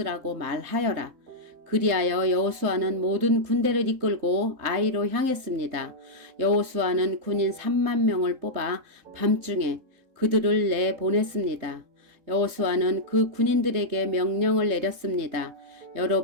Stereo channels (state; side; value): late; left; 3.7 ms